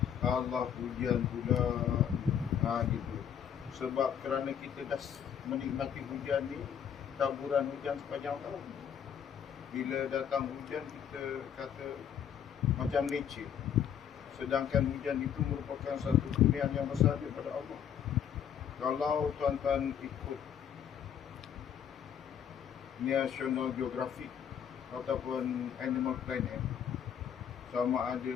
Allah hujan pula, gitu. Sebab kerana kita dah menikmati hujan ni, taburan hujan sepanjang tahun. Bila datang hujan, kita kata macam nature. Sedangkan hujan itu merupakan satu kurniaan yang besar daripada Allah. Kalau tuan-tuan ikut National Geographic ataupun Animal Planet, sama ada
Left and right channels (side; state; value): right; quieter; 8.6 dB